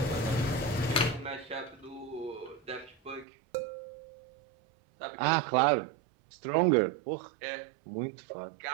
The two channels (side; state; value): left; drops out; at 3.2 s